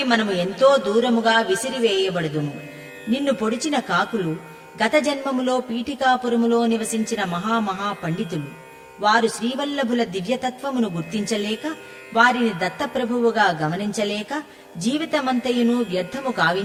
మనము ఎంతో దూరముగా విసిరివేయబడుదుము. నిన్ను పొడిచిన కాకులు గత జన్మములో పీఠికాపురములో నివసించిన మహామహా పండితులు. వారు శ్రీవల్లభుల దివ్యతత్వమును గుర్తించలేక, వారిని దత్తప్రభువుగా గమనించలేక జీవితమంతయును వ్యర్థము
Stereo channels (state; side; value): identical; both; correlation 1.00